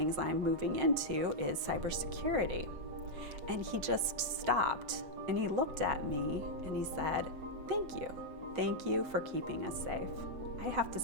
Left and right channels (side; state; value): left; late; 8.0 ms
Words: I'm moving into is cybersecurity. And he just stopped and he looked at me and he said, thank you for keeping us safe. I have to